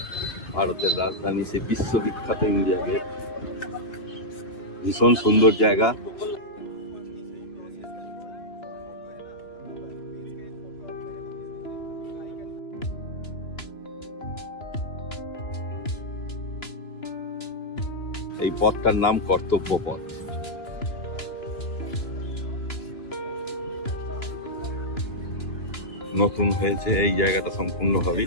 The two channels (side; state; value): right; late; 2.9 ms